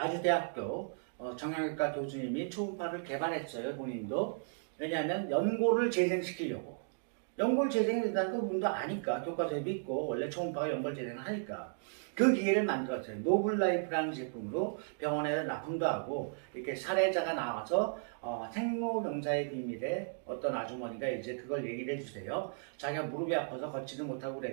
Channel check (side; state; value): left; silent; digital silence